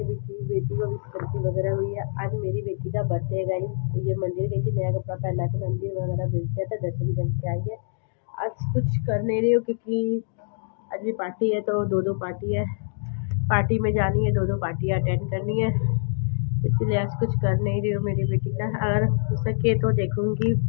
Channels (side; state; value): right; silent; digital silence